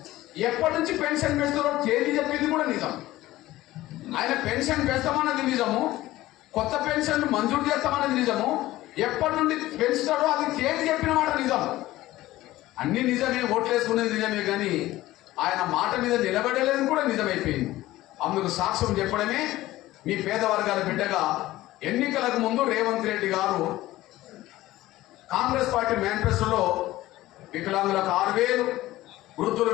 ఎప్పటి నుంచి పెన్షన్ పెంచుతారో తేదీ చెప్పింది కూడా నిజం. ఆయన పెన్షన్ పెంచుతామన్నది నిజము, కొత్త పెన్షన్లు మంజూరు చేస్తామన్నది నిజము, ఎప్పటి నుండి పెంచుతాడో అది తేదీ చెప్పిన మాట నిజం. అన్ని నిజమే, ఓట్లేసుకునేది నిజమే, కానీ ఆయన మాట మీద నిలబడలేదు కూడా నిజమైపోయింది. అందుకు సాక్ష్యం చెప్పడమే మీ పేద వర్గాల బిడ్డగా ఎన్నికలకు ముందు రేవంత్ రెడ్డి గారు కాంగ్రెస్ పార్టీ మేనిఫెస్టోలో వికలాంగులకు 6,000, వృద్ధుల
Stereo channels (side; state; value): right; quieter; 16.5 dB